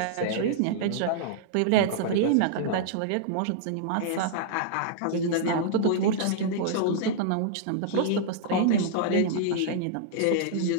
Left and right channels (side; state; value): both; different; correlation -0.02